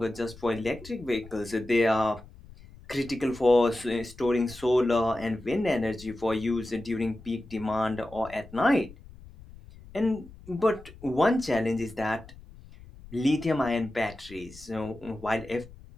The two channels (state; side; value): noise; left; rumble, 19 dB below the sound